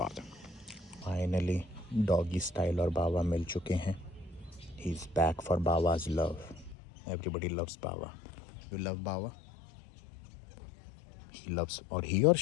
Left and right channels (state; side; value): drops out; right; at 6.8 s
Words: है। फाइनली डॉगी स्टाइल और बाबा मिल चुके हैं। ही इज़ बैक फॉर बाबाज लव, एवरीबडी लव्स बाबा। यू लव बाबा, ही लव्स, और ही और